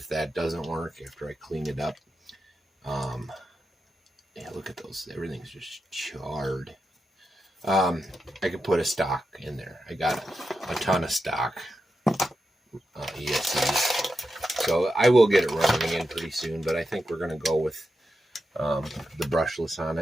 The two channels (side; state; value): both; normal; correlation 0.88